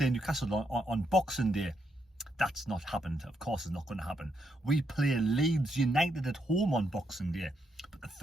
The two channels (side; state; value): both; normal; correlation 0.79